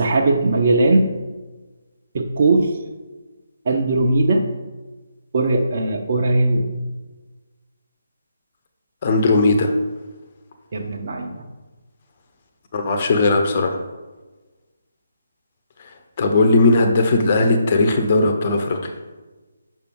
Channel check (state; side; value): inverted; both; correlation -0.74